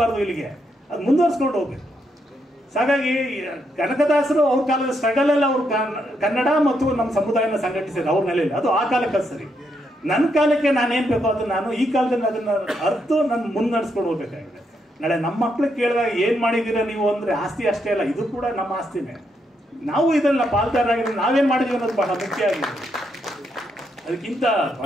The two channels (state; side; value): normal; both; correlation 0.79